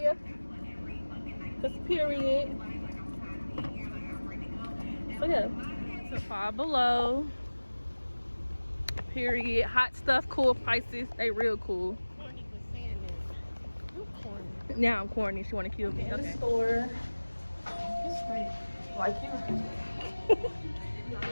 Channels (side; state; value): both; inverted; correlation -1.00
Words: This period. So yeah, so Five Below. Period. Hot stuff, cool prices. They real cool. Now I'm corny. She want to kill me. Okay. The store. Like you.